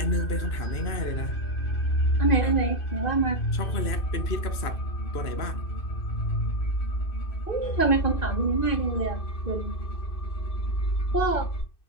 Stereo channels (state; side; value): late; right; 2.6 ms